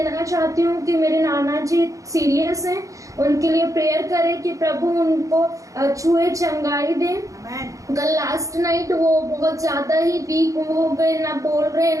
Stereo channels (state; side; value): late; left; 0.16 ms